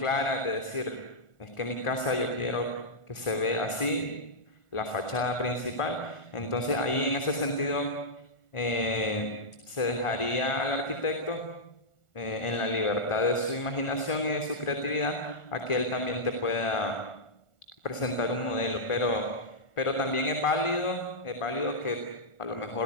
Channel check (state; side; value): late; right; 1.4 ms